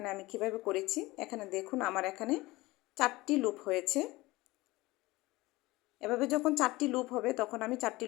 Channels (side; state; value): right; quieter; 20.3 dB